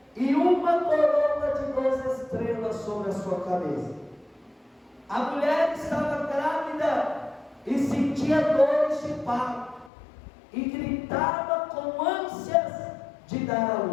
e uma coroa de 12 estrelas sobre a sua cabeça. A mulher estava grávida e sentia dores de parto e gritava com ânsias de dar à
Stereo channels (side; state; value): right; drops out; at 9.9 s